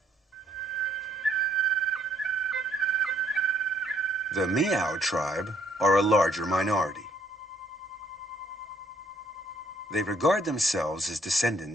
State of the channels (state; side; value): normal; both; correlation 0.67